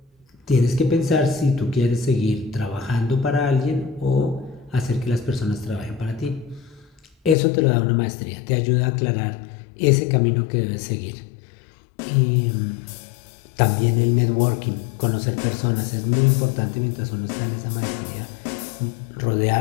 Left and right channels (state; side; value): drops out; right; at 7.4 s